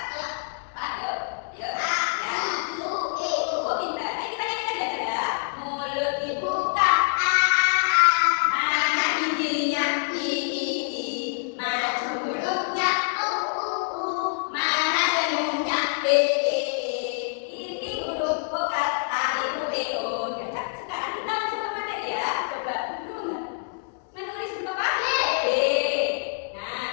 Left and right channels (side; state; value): right; silent; digital silence